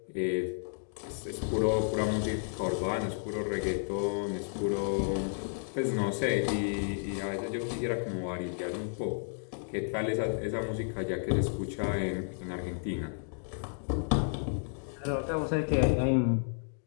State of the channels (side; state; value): right; silent; digital silence